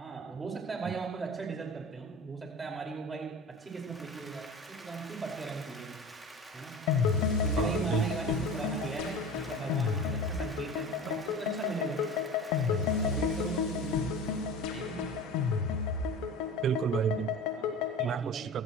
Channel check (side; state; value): both; normal; correlation 0.35